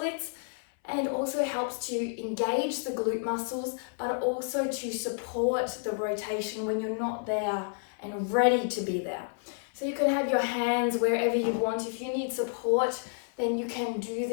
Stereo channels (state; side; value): silent; right; 58 dB below the other